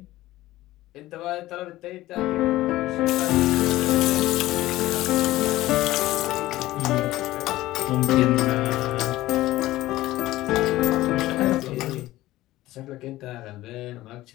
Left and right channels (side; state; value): right; quieter; 16.6 dB